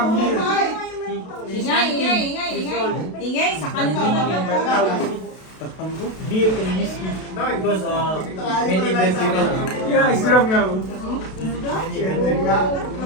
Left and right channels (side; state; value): right; late; 32 ms